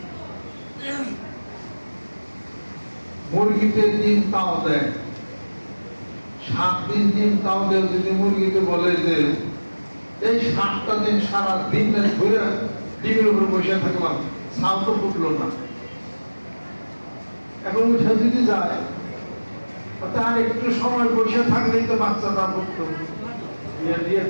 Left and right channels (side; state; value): both; inverted; correlation -1.00